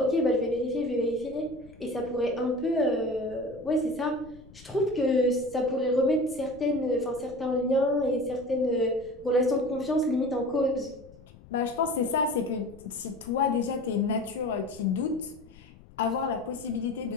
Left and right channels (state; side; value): noise; left; rumble, 22 dB below the sound